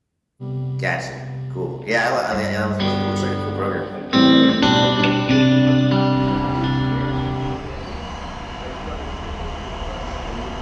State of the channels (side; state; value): both; identical; correlation 1.00